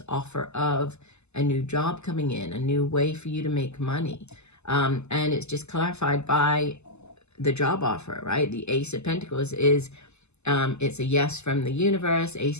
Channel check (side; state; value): right; late; 0.81 ms